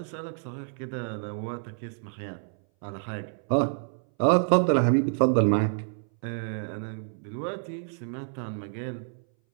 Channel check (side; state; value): left; silent; 58 dB below the other